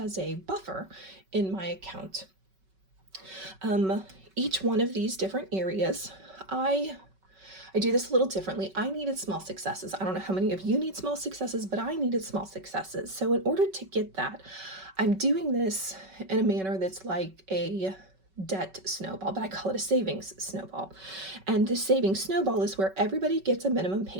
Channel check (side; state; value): left; late; 5.3 ms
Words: a buffer in my account. Each one of these different areas, I do this a little differently. I needed small successes. I don't know how many of you need small successes, but I needed small successes. So in order to get that, I'm doing this in a manner that's like a debt snowball, but I call it a savings snowball. And the savings snowball is where everybody gets a minimum